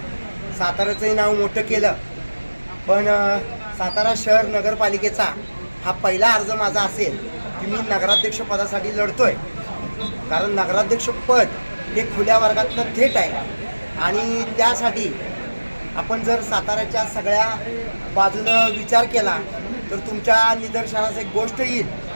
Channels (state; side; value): inverted; both; correlation -1.00